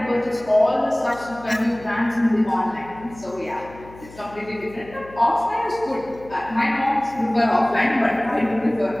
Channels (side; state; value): left; noise; hum, 20 dB below the sound